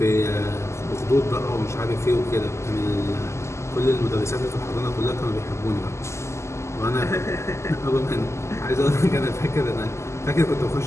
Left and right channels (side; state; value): right; late; 0.13 ms